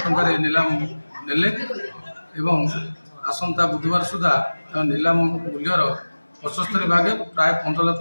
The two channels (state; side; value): inverted; both; correlation -1.00